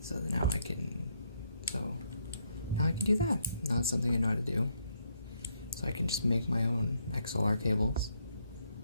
So now I can do that. Now it's something I know how to do. So I can just make my own XLR cables.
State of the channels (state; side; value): inverted; both; correlation -0.73